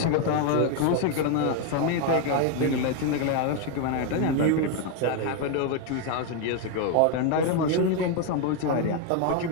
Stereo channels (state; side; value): different; both; correlation 0.01